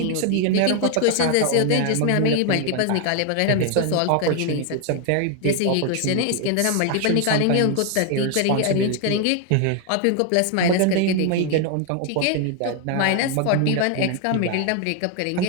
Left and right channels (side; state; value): both; different; correlation 0.00